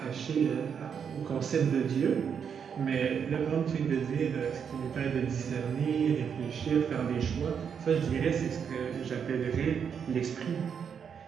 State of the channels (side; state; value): left; quieter; 7.2 dB